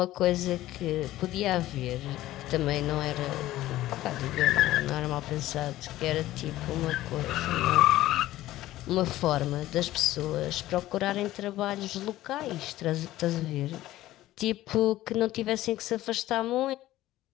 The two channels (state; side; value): quieter; right; 15.3 dB